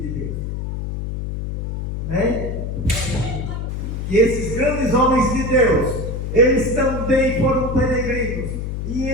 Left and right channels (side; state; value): left; noise; hum, 4 dB below the sound